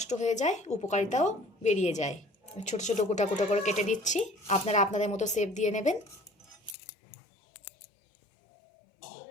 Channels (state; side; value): drops out; right; at 6.8 s